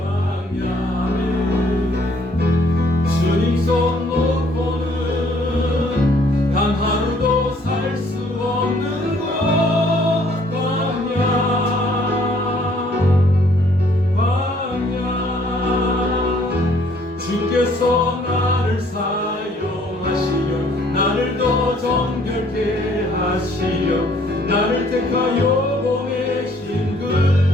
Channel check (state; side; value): normal; both; correlation 0.62